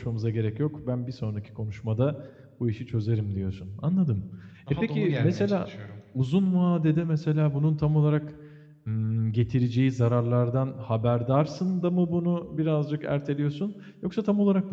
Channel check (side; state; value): both; identical; correlation 1.00